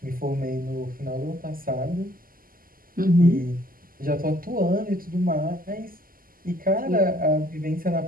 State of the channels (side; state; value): left; late; 0.42 ms